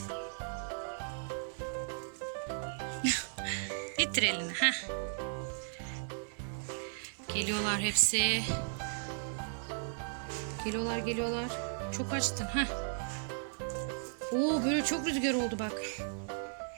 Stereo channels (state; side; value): silent; left; digital silence